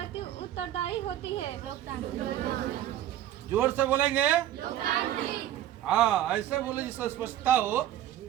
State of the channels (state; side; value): quieter; left; 12.5 dB